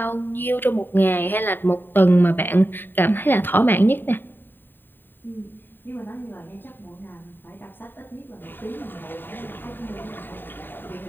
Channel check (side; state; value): right; late; 0.094 ms